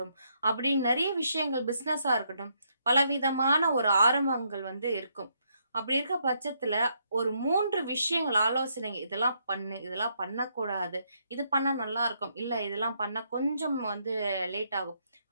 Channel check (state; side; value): inverted; both; correlation -0.75